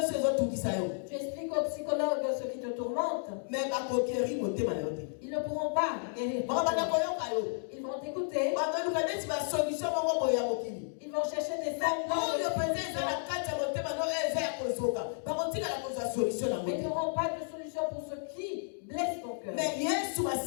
Tu expliques au psychologue ce qui te tourmente. Ils ne pourront pas guérir. Ils vont t'écouter. Ils vont chercher des mais ils n'auront pas de solution pour ce qui blesse ton cœur.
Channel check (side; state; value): right; silent; digital silence